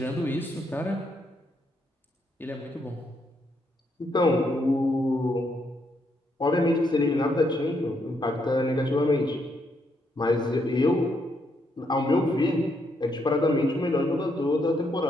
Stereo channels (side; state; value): both; normal; correlation 0.76